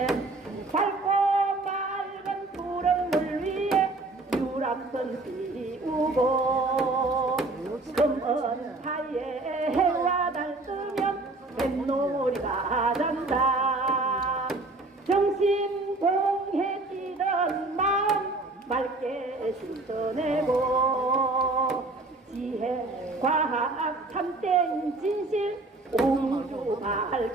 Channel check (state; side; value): quieter; left; 3.1 dB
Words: 밝고 맑은 푸른 물 위에 유람선 띄우고 검은 하에 해와 달 뜨면 뱃놀이가 잔다 정신 공해 뛰던 마음 맑게 씻어내고 지혜 과학 참된 진실 우주